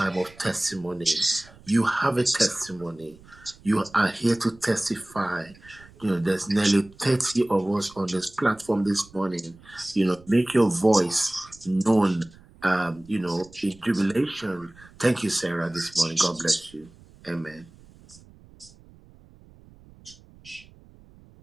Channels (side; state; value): right; noise; rumble, 24 dB below the sound